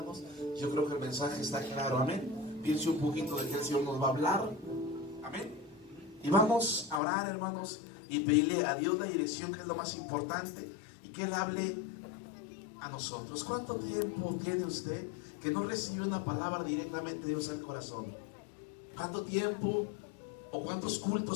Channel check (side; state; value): right; drops out; at 7.0 s